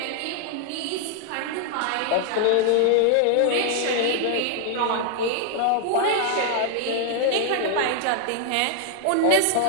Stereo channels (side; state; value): both; different; correlation 0.00